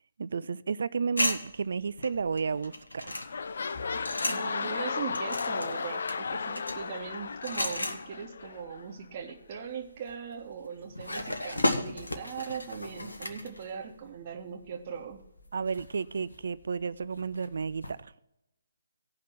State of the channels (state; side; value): inverted; both; correlation -0.82